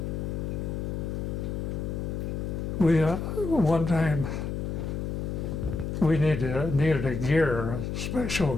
We one time we needed a gear, a special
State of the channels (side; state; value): left; noise; hum, 3 dB below the sound